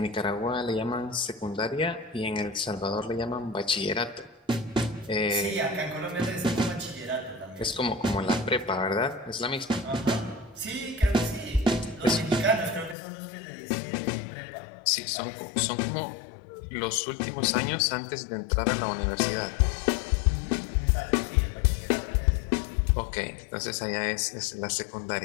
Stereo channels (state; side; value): drops out; right; at 13.0 s